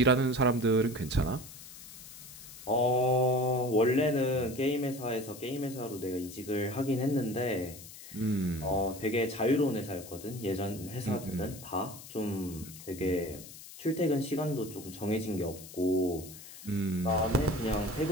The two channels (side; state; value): left; noise; hiss, 15 dB below the sound